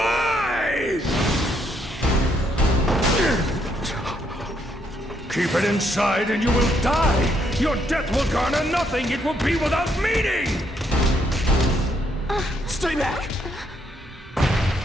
Keep it inside and you will die. Your death will garner nothing. It will be without meaning. Stay back!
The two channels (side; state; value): both; normal; correlation 0.73